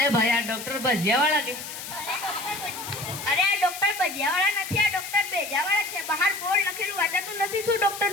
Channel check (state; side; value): noise; left; hiss, 9 dB below the sound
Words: ભાઈ આ ડોક્ટર ભજીયાવાળા કે? અરે આ ડોક્ટર ભજીયાવાળા નથી, આ ડોક્ટર ભેજાવાળા છે. બહાર બોર્ડ લખેલું વાંચાતું નથી શું ડોક્ટર